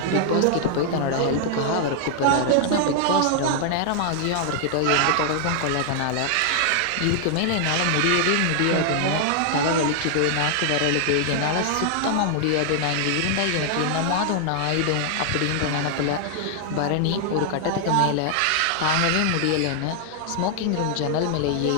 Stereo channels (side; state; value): both; different; correlation 0.00